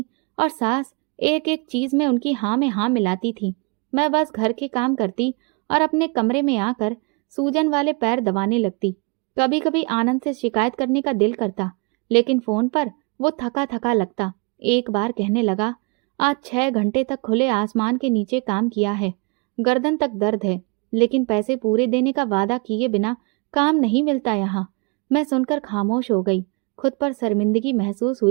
और सास एक एक चीज में उनकी हाँ में हाँ मिलाती थी। मैं बस घर के काम करती और अपने कमरे में आकर सूजन वाले पैर दबाने लगती। कभी कभी आनंद से शिकायत करने का दिल करता, लेकिन फोन पर वो थका थका लगता। एक बार कहने लगा, आज 6 घंटे तक खुले आसमान के नीचे काम किया है, गर्दन तक दर्द है, लेकिन पैसे पूरे देने का वादा किए बिना काम नहीं मिलता यहाँ। मैं सुनकर खामोश हो गई। खुद पर शर्मिंदगी महसूस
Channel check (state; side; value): quieter; left; 31.2 dB